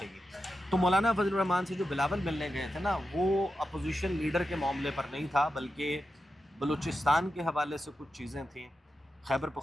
گی. تو مولانا فضل الرحمان سے جو بلاول ملنے گئے تھے نا وہ اپوزیشن لیڈر کے معاملے پر نہیں تھا بلکہ بلوچستان کے حوالے سے کچھ چیزیں تھیں, خیبر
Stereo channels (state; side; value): normal; both; correlation 0.90